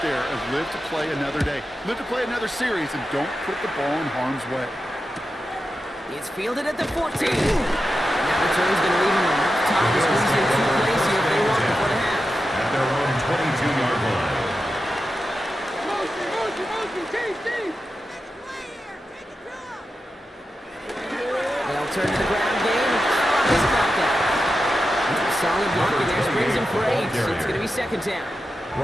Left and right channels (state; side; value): normal; both; correlation 0.90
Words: there of live to play another day. Live to play another series and don't put the ball in harm's way. It's fielded at the 14. Now the turn's going to leave him enough time to squeeze in 2 plays here if they want before the half. At their own 22-yard line. They'll turn to the ground game and drop his back out. Solid blocking there, springs him for 8, so it's going to be 2nd down.